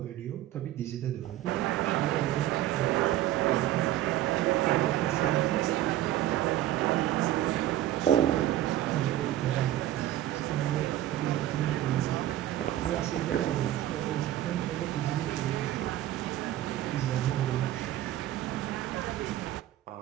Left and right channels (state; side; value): quieter; left; 13.4 dB